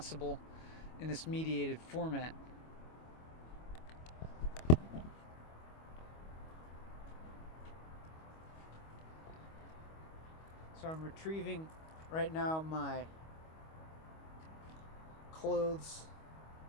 in this mediated format. So I'm retrieving right now my clothes,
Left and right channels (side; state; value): right; late; 25 ms